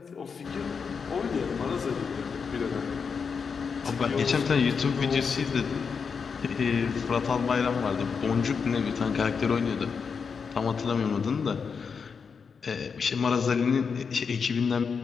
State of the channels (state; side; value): quieter; right; 5.8 dB